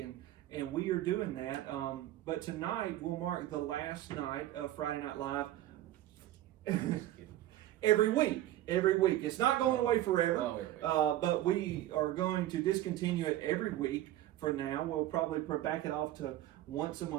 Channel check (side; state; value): left; quieter; 14.1 dB